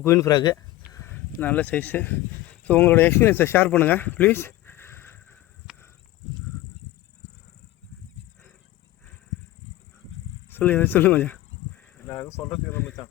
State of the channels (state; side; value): quieter; right; 16.6 dB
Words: குயின் ஃப்ராகு நல்ல சைஸு. ஸோ உங்களோட எக்ஸ்பீரியன்ஸை ஷேர் பண்ணுங்கள் ப்ளீஸ். சொல்லு மச்சான். நான் எதுவும் சொல்கிறதுக்கு மச்சான்,